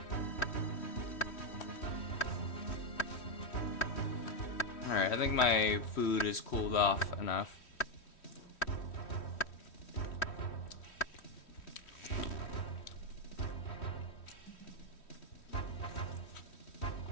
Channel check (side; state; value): right; late; 3.1 ms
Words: Alright, I think my food is cooled off enough.